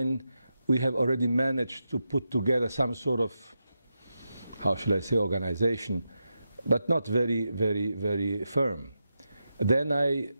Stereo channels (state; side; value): inverted; both; correlation -0.88